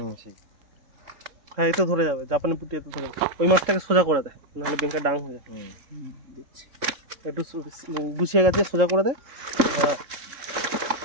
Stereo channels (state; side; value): late; left; 3.7 ms